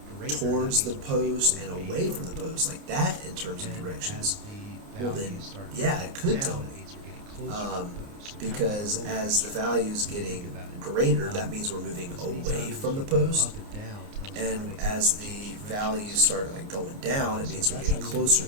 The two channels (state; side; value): late; left; 29 ms